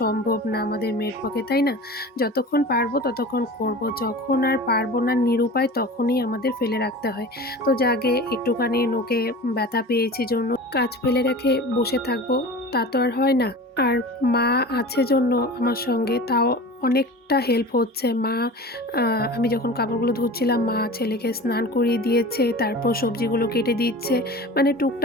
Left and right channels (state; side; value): normal; both; correlation 0.36